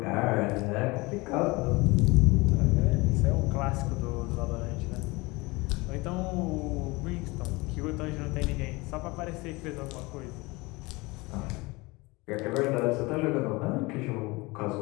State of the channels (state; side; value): quieter; right; 23.9 dB